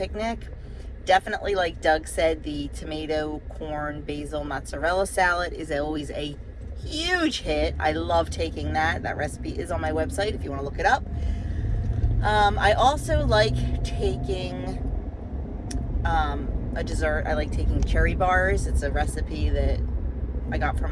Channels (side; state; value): both; identical; correlation 1.00